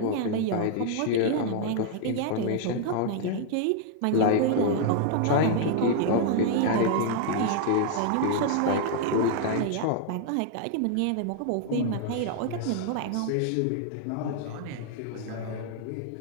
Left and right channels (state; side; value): different; both; correlation 0.00